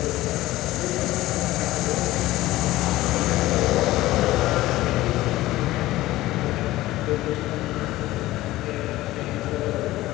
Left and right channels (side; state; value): right; quieter; 16.9 dB